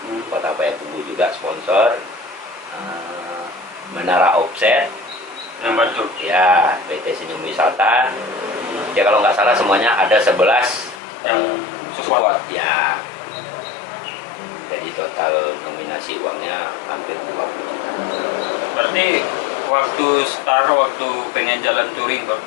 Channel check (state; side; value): drops out; right; at 11.0 s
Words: Kota Payakumbuh juga sponsor. Menara Offset, Yang bantu. ya PT Senyum Wisata. Ya kalau nggak salah semuanya ada 11 Yang support. Ya. Jadi total nominasi uangnya hampir 20 juta. Berarti waktu waktu pengen jalan touring bang,